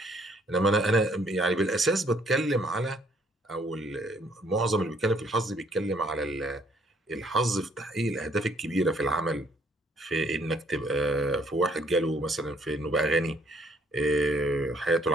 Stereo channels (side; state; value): both; normal; correlation 0.65